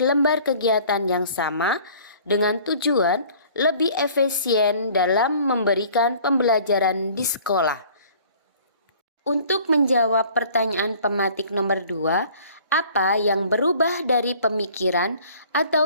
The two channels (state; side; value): inverted; both; correlation -0.51